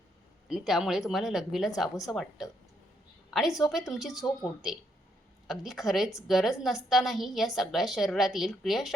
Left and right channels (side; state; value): both; normal; correlation 0.74